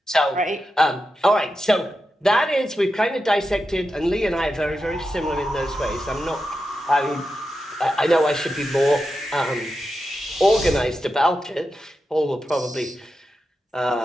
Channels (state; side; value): normal; both; correlation 0.89